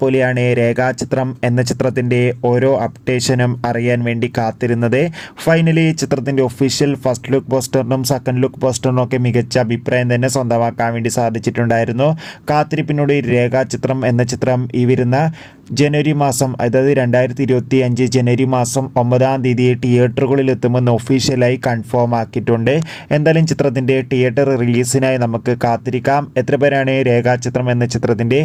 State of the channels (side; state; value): both; identical; correlation 1.00